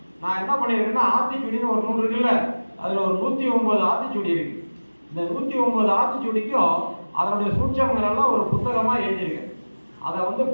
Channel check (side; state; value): both; inverted; correlation -1.00